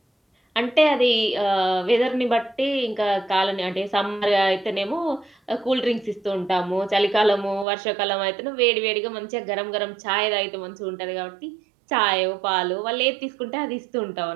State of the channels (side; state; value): left; drops out; at 7.7 s